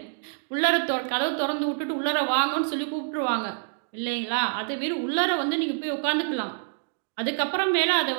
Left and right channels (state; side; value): silent; left; digital silence